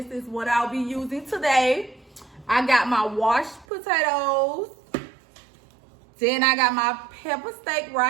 is what I'll be using today. I got my washed potatoes. Then I got my pepper steak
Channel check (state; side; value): drops out; left; at 3.7 s